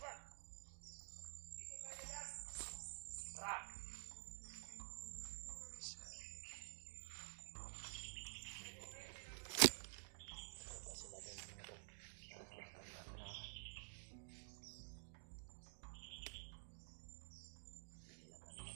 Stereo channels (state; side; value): silent; left; digital silence